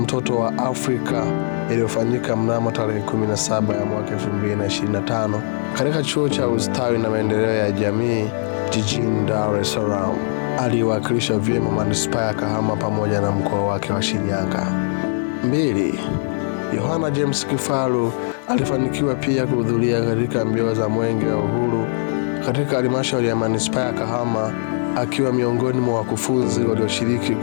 wa Afrika iliyofanyika mnamo tarehe 17 ya mwaka 2025 katika chuo cha ustawi na maendeleo ya jamii jijini Dar es Salaam. Aliwakilisha vyema manispaa ya Kahama pamoja na mkoa wake wa Shinyanga. 2. Yohana James Kifaru alifanikiwa pia kuhudhuria katika mbio za Mwenge wa Uhuru katika halmashauri ya manispaa ya Kahama, akiwa miongoni mwa wakufunzi walioshiriki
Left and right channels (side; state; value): right; silent; digital silence